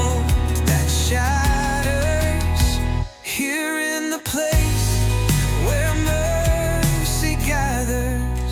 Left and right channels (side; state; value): both; identical; correlation 1.00